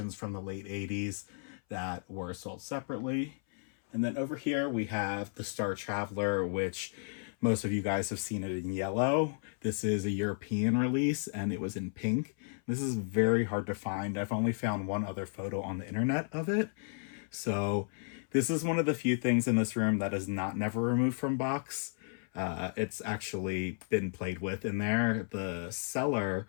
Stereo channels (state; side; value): silent; right; 56 dB below the other